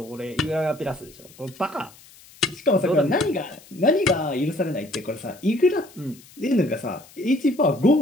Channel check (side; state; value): left; noise; hiss, 24 dB below the sound